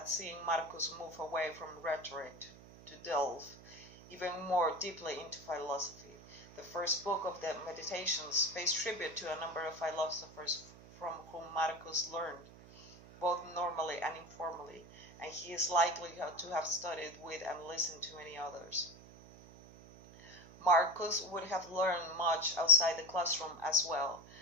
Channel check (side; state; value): right; noise; hum, 20 dB below the sound